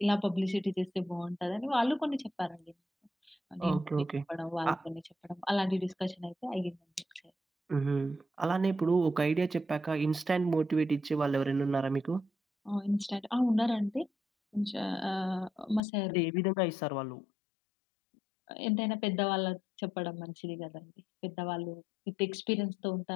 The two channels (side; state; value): right; drops out; at 15.8 s